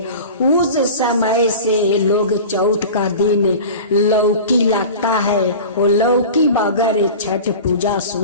उस समय से लोग चौथ का दिन लौकी लगता है। वो लौकी बगैर छठ पूजा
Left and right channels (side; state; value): both; inverted; correlation -0.35